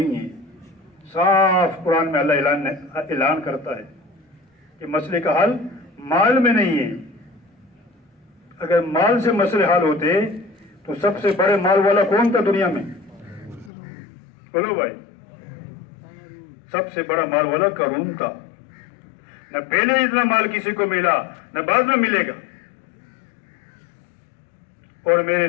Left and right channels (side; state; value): right; drops out; at 13.7 s